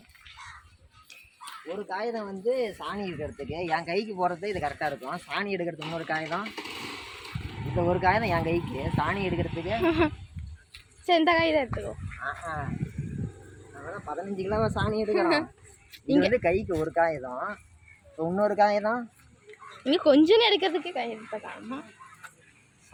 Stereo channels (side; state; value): both; identical; correlation 1.00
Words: ஒரு காகிதம் வந்து சாணி எடுக்கிறதுக்கு என் கைக்கு போகிறது இது கரெக்டாக இருக்கும். சாணி எடுக்கிறதுக்கு இன்னொரு காகிதம், இந்த ஒரு காகிதம் என் கைக்கு சாணி எடுக்கிறதுக்கு. சரி, இந்த காகிதம் எடுத்துக்கோ. அதெல்லாம் 15 கிலோவா சாணி எடுக்கிறோம். இது வந்து கைக்கு ஒரு காகிதம், இன்னொரு காகிதம் இன்னும் கொஞ்சம் எடுக்கிறதுக்கு காகிதம்.